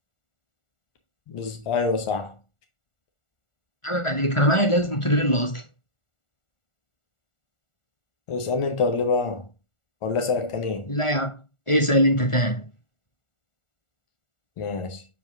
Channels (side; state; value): right; late; 1.4 ms